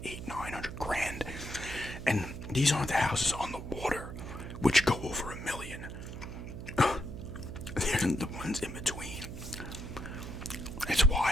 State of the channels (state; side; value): noise; right; hum, 9 dB below the sound